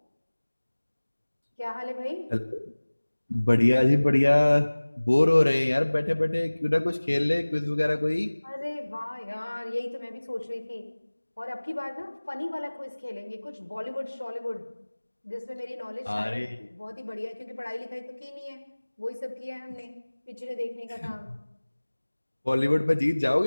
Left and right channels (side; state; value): both; inverted; correlation -1.00